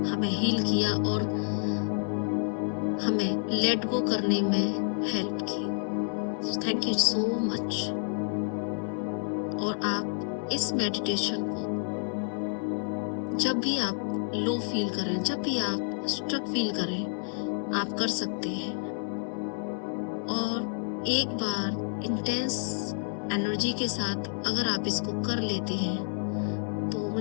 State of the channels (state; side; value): silent; right; 58 dB below the other